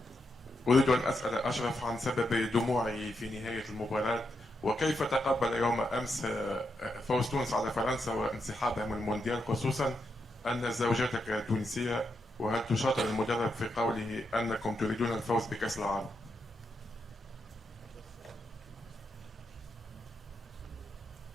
أريد أن أسأل أشرف عن سبب دموعه في نهاية المباراة وكيف تقبل يوم أمس فوز تونس على فرنسا وانسحابها من المونديال خصوصا أن زوجتك تونسية وهل تشاطر المدرب في قوله أنكم تريدون الفوز بكأس العالم؟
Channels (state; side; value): normal; both; correlation 0.83